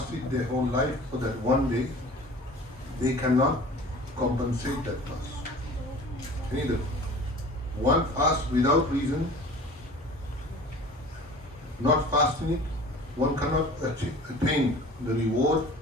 their whole life for that one day, they cannot compensate that fast. Neither. One fast without reason, not fasting it, one cannot attain the reward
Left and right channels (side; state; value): both; normal; correlation 0.42